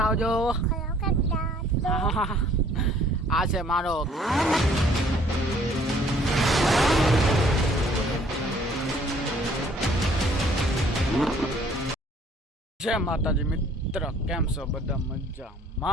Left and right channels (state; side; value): normal; both; correlation 0.59